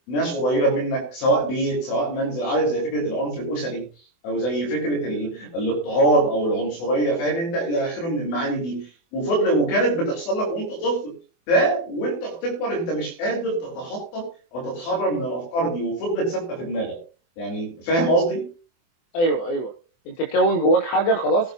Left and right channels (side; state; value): right; late; 24 ms